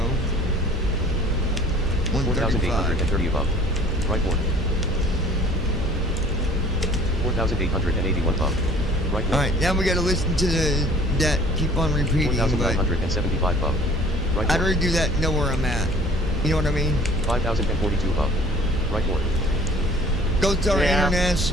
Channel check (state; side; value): normal; both; correlation 0.51